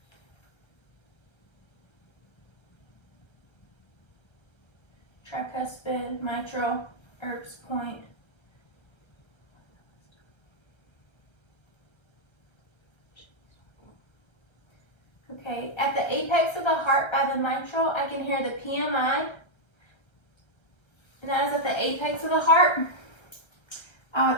mitral, Erb's point. Okay, at the apex of the heart by the mitral, I can hear the PMI and that is at the apex of the heart. I would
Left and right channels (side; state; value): right; late; 1.3 ms